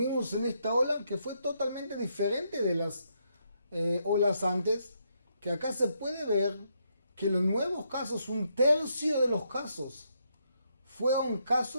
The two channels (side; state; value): both; inverted; correlation -0.77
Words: en esta ola, que fue totalmente diferente de las olas antes, que acá se puede ver que los nuevos casos, un tercio de los casos, fueron